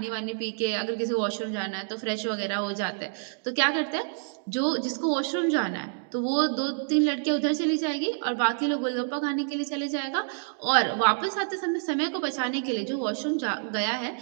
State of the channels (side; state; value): left; silent; digital silence